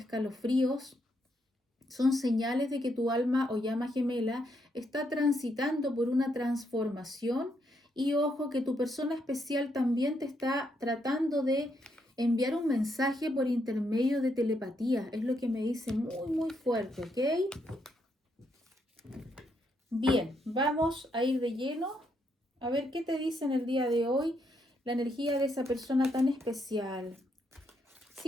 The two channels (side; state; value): both; normal; correlation 0.77